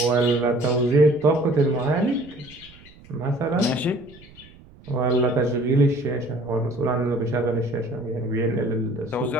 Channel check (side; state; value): right; noise; rumble, 23 dB below the sound